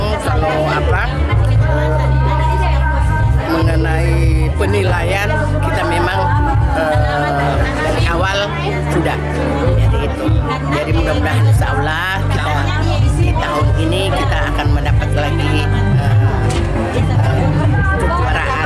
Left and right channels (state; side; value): identical; both; correlation 1.00